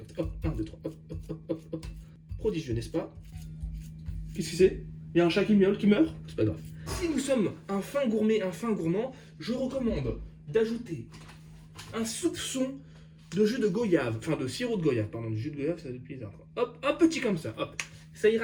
Hop, 1, 2, 3, hop, hop, hop, hop, hop. Prodigieux, n'est-ce pas? Qu'est-ce que c'est? Il y a un chat qui miaule, qui meurt? C'est pas grave. Si nous sommes un fin gourmet, un fin gourmand, je recommande d'ajouter un soupçon de jus de goyave, enfin de sirop de goyave, pardon, du jus de goyave, ça depuis bizarre. Hop, un petit comme ça, hop. Ça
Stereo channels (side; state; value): both; identical; correlation 1.00